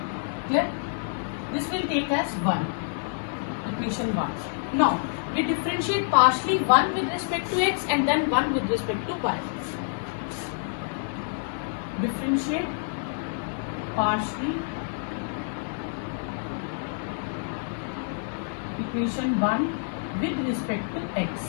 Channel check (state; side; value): silent; right; digital silence